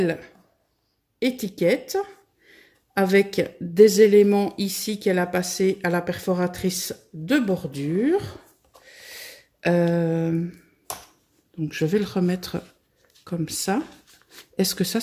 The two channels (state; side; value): identical; both; correlation 1.00